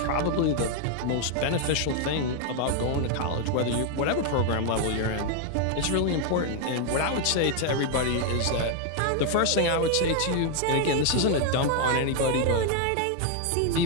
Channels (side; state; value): both; different; correlation 0.00